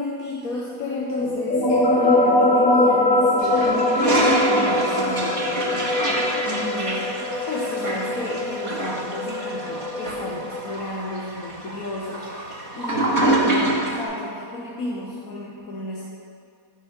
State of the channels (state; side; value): late; right; 4.2 ms